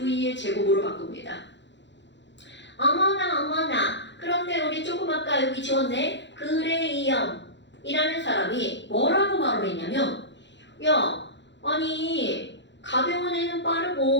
제곱으로 바꿉니다. 어머나 어머나. 그런데 우리 조금 아까 여기 지웠네. 그레이엄이라는 사람이 뭐라고 말을 했냐면 야, 아니 가벼운 애는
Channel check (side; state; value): right; late; 0.52 ms